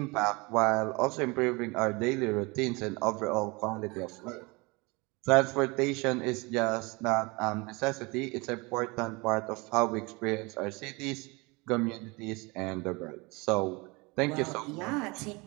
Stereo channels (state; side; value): quieter; left; 26.4 dB